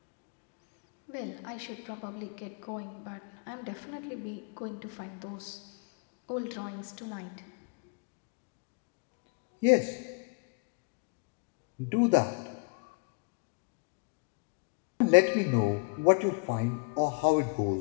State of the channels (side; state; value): right; quieter; 32.3 dB